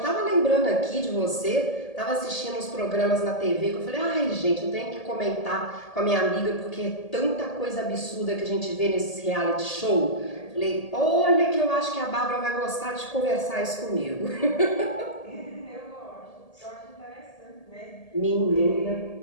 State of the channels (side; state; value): right; late; 1.8 ms